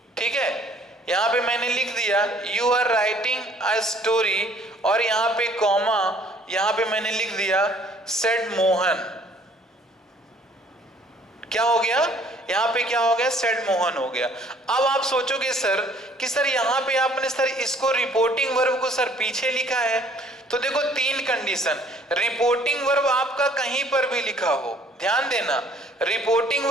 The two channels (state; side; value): normal; both; correlation 0.58